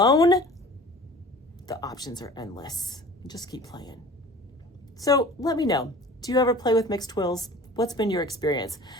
the options are endless. Just keep playing. So let me know, do you ever play with mixed twills? What's been your experience?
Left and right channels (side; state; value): both; normal; correlation 0.43